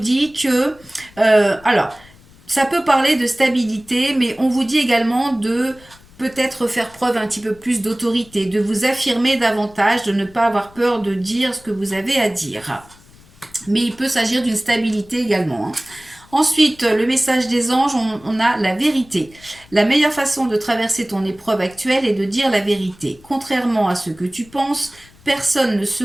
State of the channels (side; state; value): left; noise; rumble, 26 dB below the sound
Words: que... alors, ça peut parler de stabilité, mais on vous dit également de peut-être faire preuve un petit peu plus d'autorité, de vous affirmer davantage, de ne pas avoir peur de dire ce que vous avez à dire. Mais il peut s'agir d'une stabilité également, hein. Ensuite, le message des anges, on a la vérité. La meilleure façon de traverser ton épreuve actuelle est de dire la vérité. Contrairement à ce que tu penses, personne ne